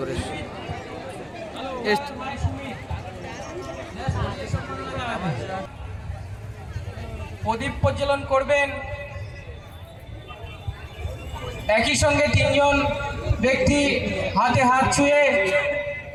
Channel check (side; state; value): both; identical; correlation 1.00